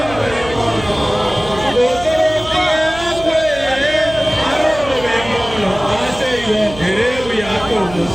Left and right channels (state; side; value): noise; right; hum, 14 dB below the sound